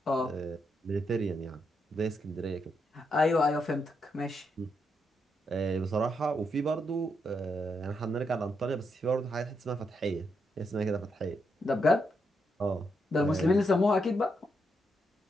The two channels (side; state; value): both; normal; correlation 0.80